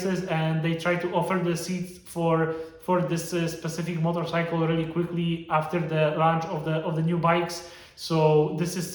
and they try to offer the seats for this specific motorcycle really quickly after the launch of the new bikes. So this is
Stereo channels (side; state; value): both; identical; correlation 1.00